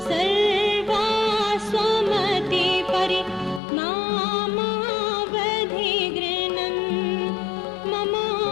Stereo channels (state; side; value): drops out; right; at 3.6 s